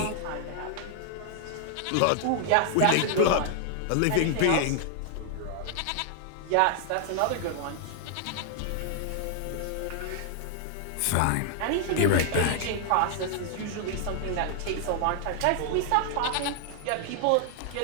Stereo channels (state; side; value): different; both; correlation 0.00